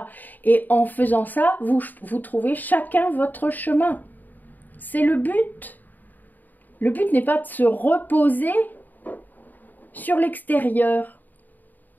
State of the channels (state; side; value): late; right; 0.086 ms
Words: Et en faisant ça, vous trouvez chacun votre chemin. C'est le but. Le but n'est pas de se reposer sur l'extérieur.